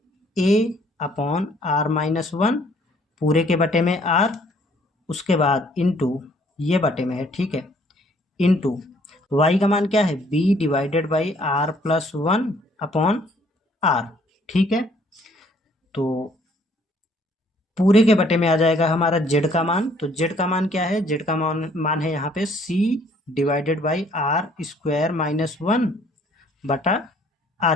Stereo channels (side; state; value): both; normal; correlation 0.62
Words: a upon are minus one पूरे के बटे में r, उसके बाद इनटू ये बटे में है, ठीक है, इनटू y का मान क्या है b divided by r plus one upon r। ठीक है, तो पूरे के बटे में आ जाएगा हमारा z का मान। तो z का मान क्या है, z का मान है यहाँ पे c divided by R square minus one बटा